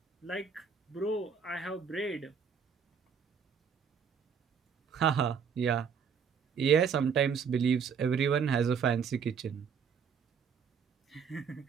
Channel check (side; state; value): left; quieter; 6.5 dB